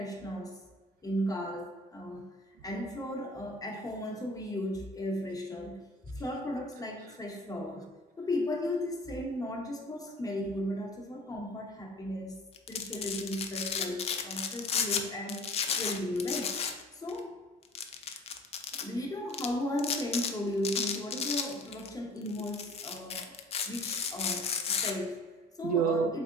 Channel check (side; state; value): both; normal; correlation 0.45